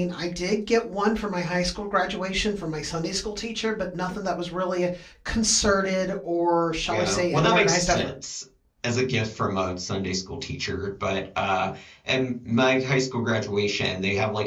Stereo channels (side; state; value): both; identical; correlation 1.00